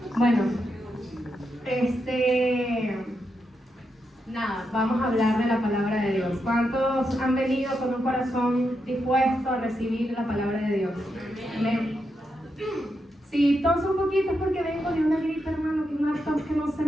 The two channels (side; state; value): both; normal; correlation 0.84